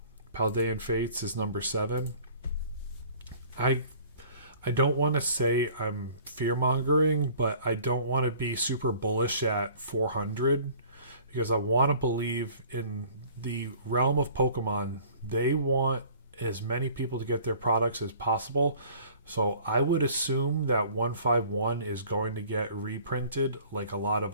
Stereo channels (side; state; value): both; inverted; correlation -0.51